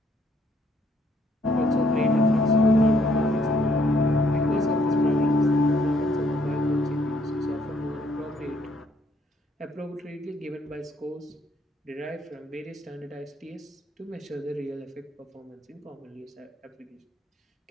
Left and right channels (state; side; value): normal; both; correlation 0.68